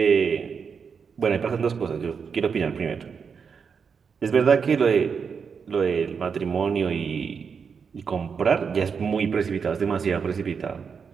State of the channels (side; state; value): left; quieter; 6.1 dB